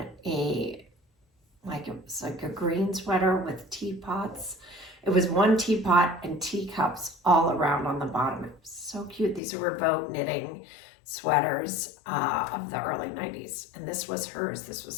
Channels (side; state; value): right; drops out; at 9.4 s